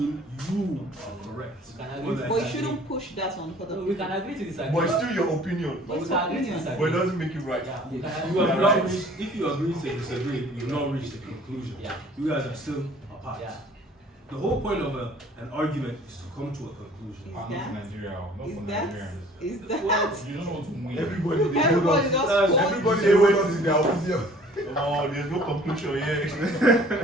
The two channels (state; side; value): normal; both; correlation 0.52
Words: you are correct. Or that- But you shouldn't push that on other We people. can agree to disagree. But it's still your opinion. But we can agree to But it disagree. doesn't make you right. Yeah, we can You have agree. not reached, if you agree to disagree, you've not reached a conclusion. Yeah. You guys are still apart. Yeah. The whole point of an argument is to come to a conclusion. Not for Nigeria, not Is for that Nigerians. is that You don't want to win. Everybody they hold everybody on. just That's- hold- Everybody they hold on to their opinion. Oh, there's no conclusion yet.